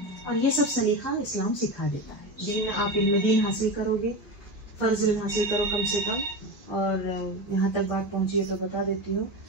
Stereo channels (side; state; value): both; normal; correlation 0.21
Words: और ये सब सलीका इस्लाम सिखा देता है। दीन आप इल्म दीन हासिल करोगे, फ़र्ज़ इल्म हासिल करो कम से कम। और यहाँ तक बात पहुँची है तो बता देती हूँ,